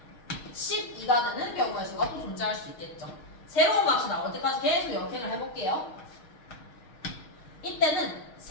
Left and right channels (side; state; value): right; late; 6.4 ms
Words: 12가 되는 경우의 수가 또 존재할 수 있겠죠. 새로운 값이 나올 때까지 계속 역행을 해볼게요. 이때는